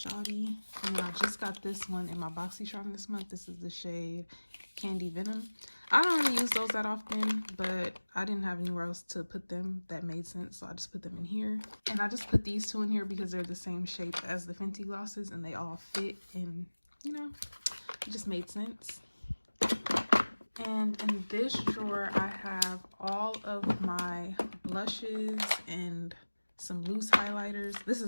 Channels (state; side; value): inverted; both; correlation -1.00